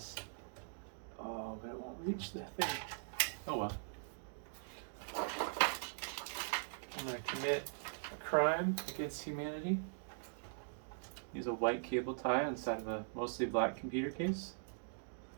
Oh, but it won't reach that thing. Oh well. I'm going to commit a crime against humanity. Use a white cable tie inside of a mostly black computer case.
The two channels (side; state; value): left; silent; digital silence